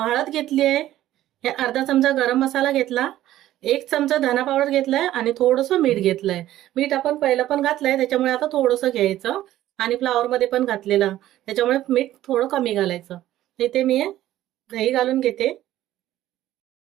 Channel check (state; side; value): quieter; left; 13.8 dB